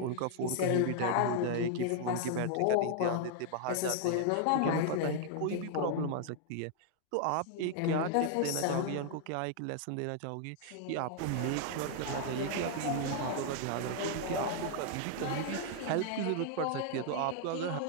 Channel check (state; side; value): different; both; correlation -0.01